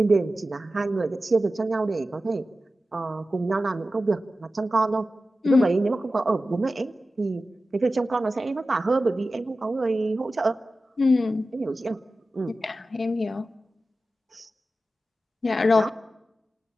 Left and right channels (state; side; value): normal; both; correlation 0.94